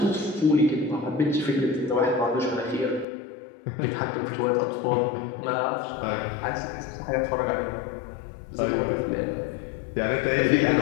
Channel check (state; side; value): drops out; right; at 3.1 s